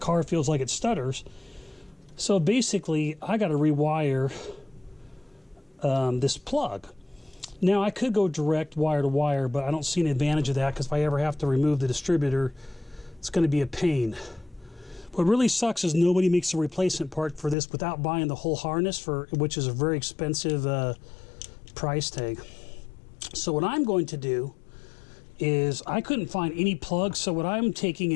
car feels like it stutters. So basically, I got to rewire this plug. Now, I could go direct wire to wire, but I don't see an advantage of that, because if I ever have to remove the distributor, it's going to be a pain. What really sucks is nobody makes a replacement part for this without buying the whole harness, which is a very expensive price tag. So what I'm going to do is, I couldn't find any plugs, so what I'm taking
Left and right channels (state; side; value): drops out; right; at 17.6 s